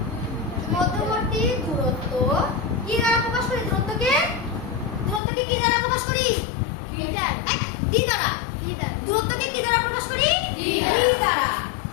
কি দ্বারা প্রকাশ করি? দূরত্বকে কি দ্বারা প্রকাশ করি? মিটার। ডি দ্বারা। দূরত্বকে কি দ্বারা প্রকাশ করি? ডি দ্বারা।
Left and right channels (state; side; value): drops out; right; at 5.2 s